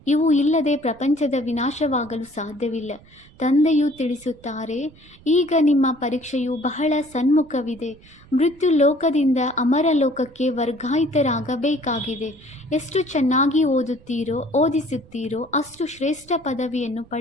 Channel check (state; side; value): noise; right; rumble, 25 dB below the sound